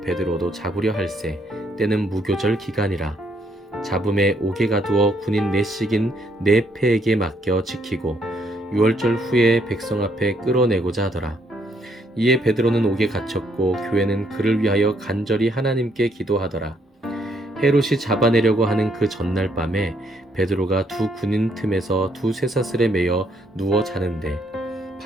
베드로도 잡으려 할세 때는 무교절 기간이라. 잡음에 옥에 가두어 군인 넷씩인 네 패에게 맡겨 지키고 6월절 후에 백성 앞에 끌어내고자 하더라. 이에 베드로는 옥에 갇혔고 교회는 그를 위하여 간절히 하나님께 기도하더라. 헤롯이 잡아내려고 하는 그 전날 밤에 베드로가 두 군인 틈에서 두 쇠사슬에 매여 누워 자는데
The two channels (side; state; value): both; normal; correlation 0.71